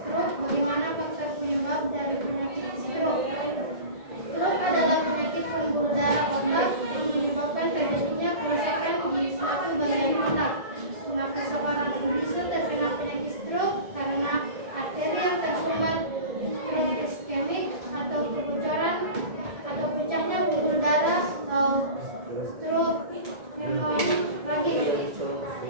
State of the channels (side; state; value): left; late; 1.7 ms